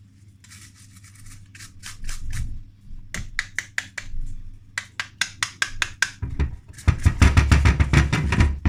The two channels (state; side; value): identical; both; correlation 1.00